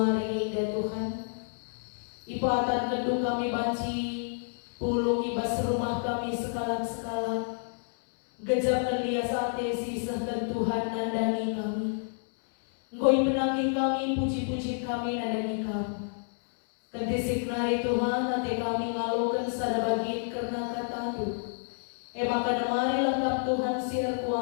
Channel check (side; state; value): right; silent; 58 dB below the other